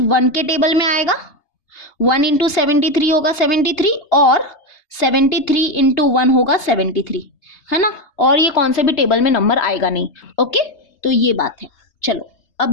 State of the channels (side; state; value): right; late; 3.3 ms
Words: 1 के टेबल में आएगा, 1 इंटू 73 होगा 73, और 73 इंटू 1 होगा 73, है ना, और ये कौन से भी टेबल में नंबर आएगा नहीं। ओके, तो ये बात है। चलो